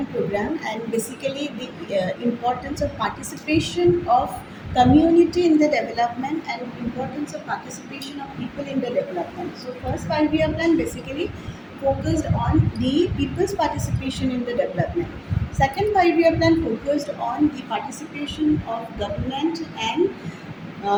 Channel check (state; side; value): identical; both; correlation 1.00